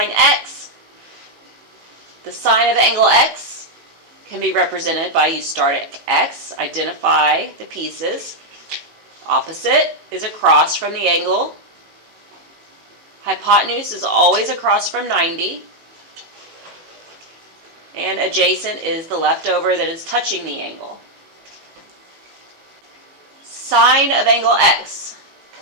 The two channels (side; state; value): left; late; 18 ms